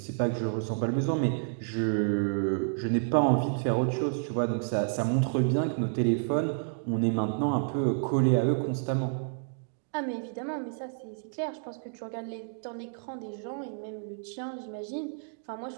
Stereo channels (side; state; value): left; silent; digital silence